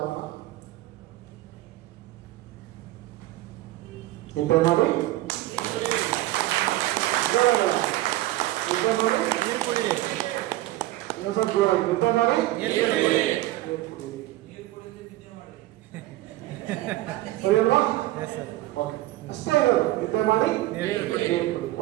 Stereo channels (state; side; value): quieter; left; 16.7 dB